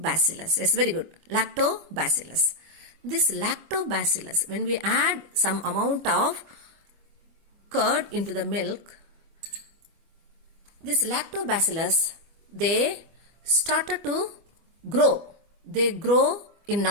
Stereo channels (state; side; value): late; left; 25 ms